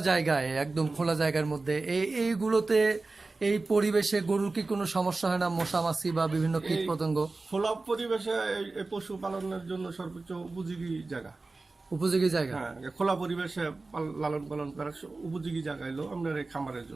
জায়গায়, একদম খোলা জায়গার মধ্যে এইগুলোতে, এই পরিবেশে গরুর কি কোনো সমস্যা হয় না, মশা মাছি বা বিভিন্ন কীট পতঙ্গ? খোলা পরিবেশে এই পশু পালনের জন্য সর্বোচ্চ উপযোগী জায়গা। উপযোগী জায়গা? হ্যাঁ, খোলা পরিবেশে লালন পালন করার উপযোগী জায়গা হলো আপনার এই খামারের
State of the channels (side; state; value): left; quieter; 3.5 dB